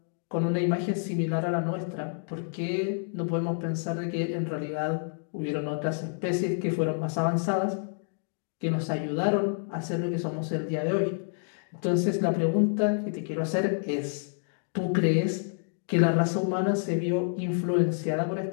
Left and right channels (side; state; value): right; silent; digital silence